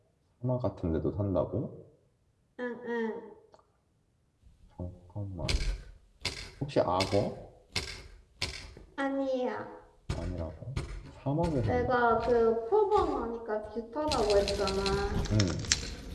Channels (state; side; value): identical; both; correlation 1.00